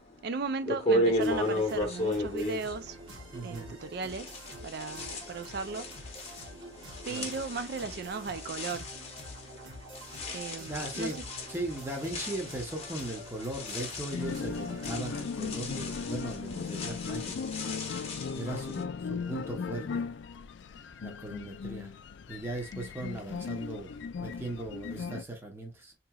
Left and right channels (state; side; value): normal; both; correlation 0.30